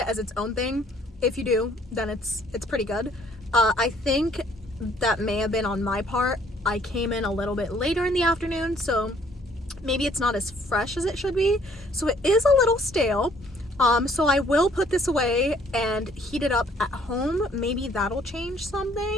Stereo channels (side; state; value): both; normal; correlation 0.61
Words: as its own thing. If you do, then it's pretty good. I think that may have been on my part. I came in a little bit later in the afternoon, so maybe it's not as fresh as it should be. So it is a little stale. So I will put this away and heat it up at home. Maybe that'll change